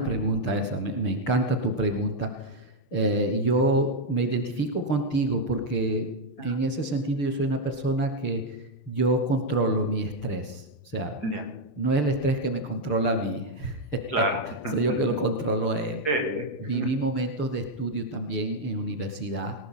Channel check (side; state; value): right; late; 6.8 ms